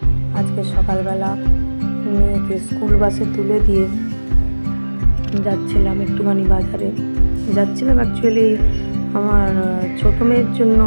আজকে সকালবেলা মেয়েকে স্কুল বাসে তুলে দিয়ে যাচ্ছিলাম একটুখানি বাজারে। যাচ্ছিলাম অ্যাকচুয়ালি আমার ছোটো মেয়ের জন্য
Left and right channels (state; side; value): inverted; both; correlation -1.00